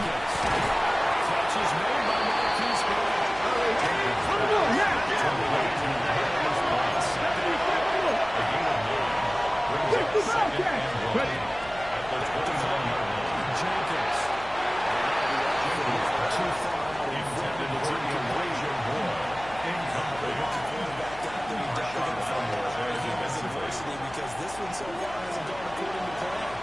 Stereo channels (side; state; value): left; noise; hum, 17 dB below the sound